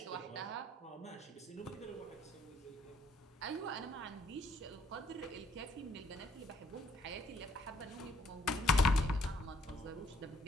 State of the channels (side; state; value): both; normal; correlation 0.68